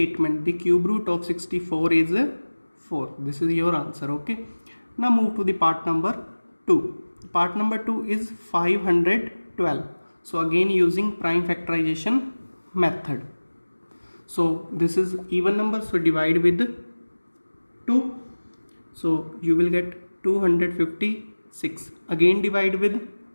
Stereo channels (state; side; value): inverted; both; correlation -1.00